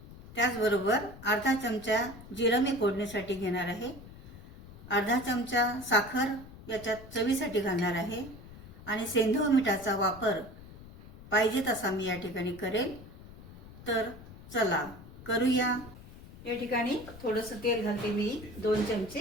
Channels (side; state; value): left; noise; rumble, 17 dB below the sound